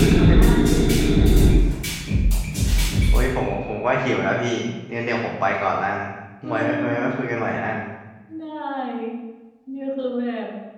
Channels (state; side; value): identical; both; correlation 1.00